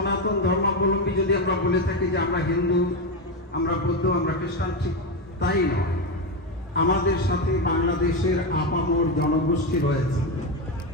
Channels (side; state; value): both; normal; correlation 0.11